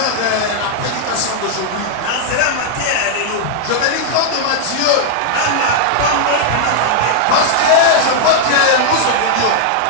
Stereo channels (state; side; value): different; both; correlation -0.01